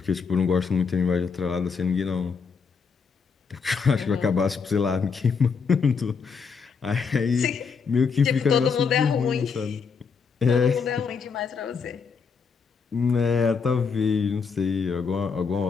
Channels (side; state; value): right; quieter; 5.6 dB